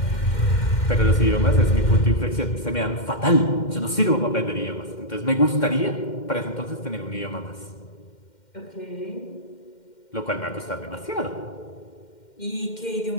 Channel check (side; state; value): right; late; 2.1 ms